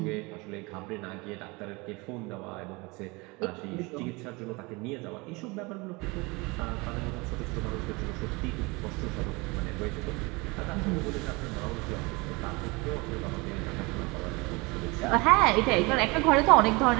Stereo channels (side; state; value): left; quieter; 25.8 dB